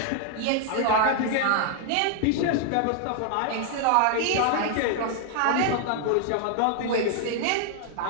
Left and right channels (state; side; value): different; both; correlation 0.00